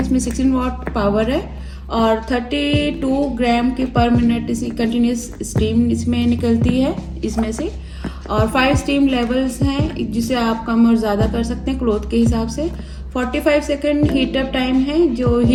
इसमें 16 वाट पावर है और 32 ग्राम की पर मिनट इसी कंटिन्यूस स्टीम इसमें निकलती है इसमें से, और 5 स्टीम लेवल्स हैं जिसे आप कम और ज़्यादा कर सकते हैं क्लॉथ के हिसाब से। 45 सेकंड हीट अप टाइम है, जो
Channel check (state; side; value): identical; both; correlation 1.00